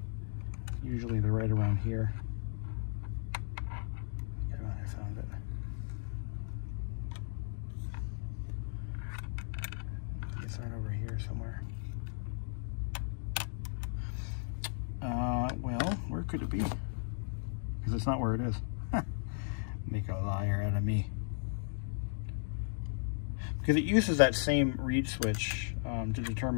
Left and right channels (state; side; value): silent; right; digital silence